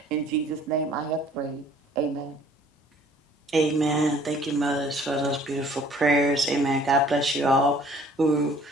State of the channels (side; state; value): both; normal; correlation 0.55